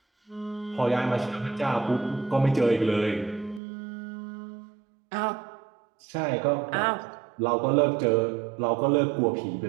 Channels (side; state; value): left; drops out; at 3.6 s